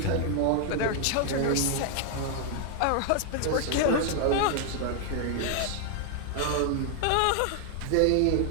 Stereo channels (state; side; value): different; both; correlation 0.00